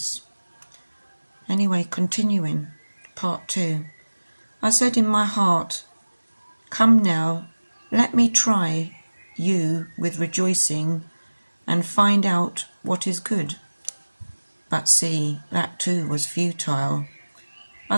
Anyway, continuing, part 2. I said in my heart, come now, let me try you with rejoicing and find out what is good. But see, that too was futile.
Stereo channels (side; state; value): both; inverted; correlation -1.00